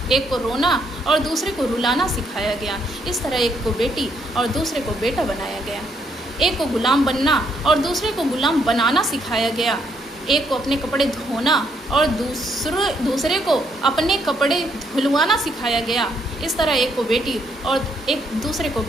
एक को रोना और दूसरे को रुलाना सिखाया गया। इस तरह एक को बेटी और दूसरे को बेटा बनाया गया। एक को गुलाम बनना और दूसरे को गुलाम बनाना सिखाया गया। एक को अपने कपड़े धोना और दूसरे को अपने कपड़े धुलवाना सिखाया गया। इस तरह एक को बेटी और एक दूसरे को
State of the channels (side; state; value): both; normal; correlation 0.73